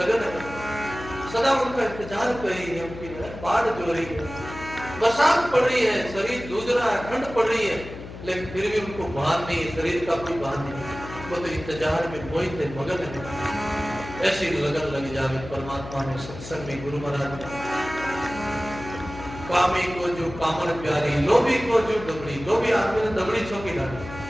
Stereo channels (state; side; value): noise; left; hum, 12 dB below the sound